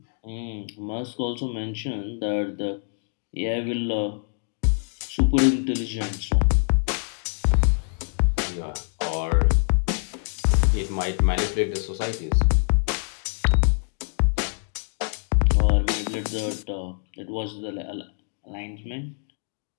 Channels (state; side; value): silent; right; 62 dB below the other